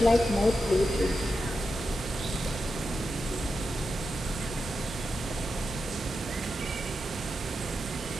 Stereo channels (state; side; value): normal; both; correlation 0.88